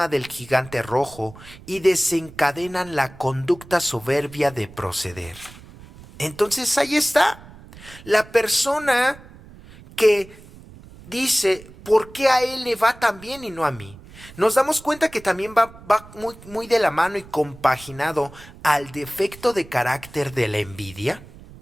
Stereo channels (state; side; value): noise; right; rumble, 20 dB below the sound